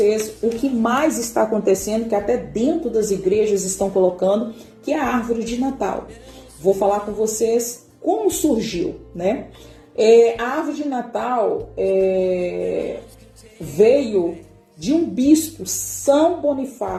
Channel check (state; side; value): identical; both; correlation 1.00